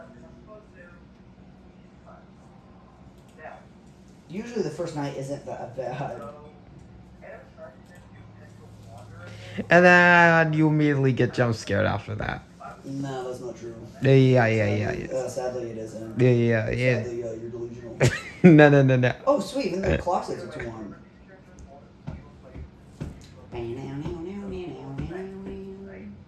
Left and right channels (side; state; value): both; identical; correlation 1.00